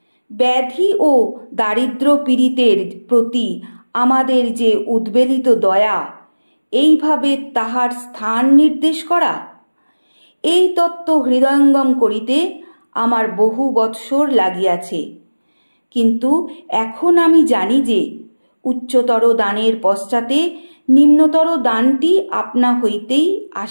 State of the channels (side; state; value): both; inverted; correlation -1.00